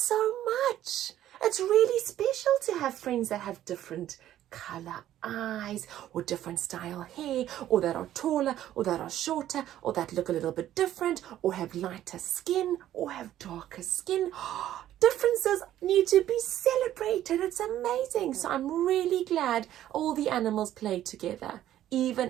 much. It's really special to have friends that have different color eyes or different style hair, or that are taller or that are shorter, or that look a little bit different, or have lighter skin or have darker skin. Differences need to be celebrated. It's amazing. So I'm really glad all the animals play together,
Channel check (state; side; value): quieter; left; 12.5 dB